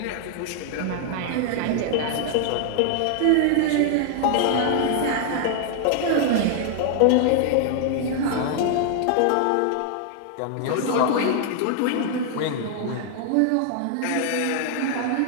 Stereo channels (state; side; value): different; both; correlation 0.00